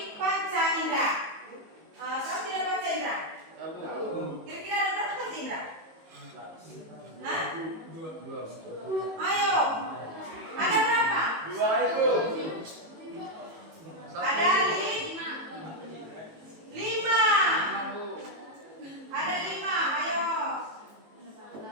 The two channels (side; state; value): left; late; 18 ms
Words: panca indera. Tahu tidak panca indera? Kira-kira ada berapa panca indera? Hah? Dua. Ayo. Ada berapa? Dua itu. Ada lima. Ada 5. Ayo.